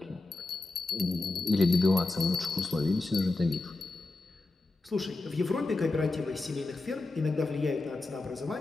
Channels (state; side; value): quieter; right; 3.2 dB